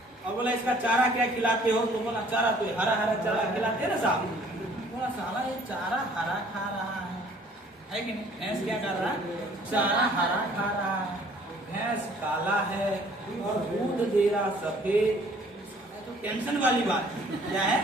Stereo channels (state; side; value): normal; both; correlation 0.57